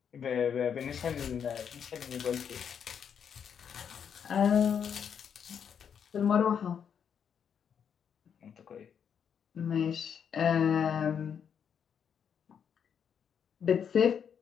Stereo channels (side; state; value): right; quieter; 7.7 dB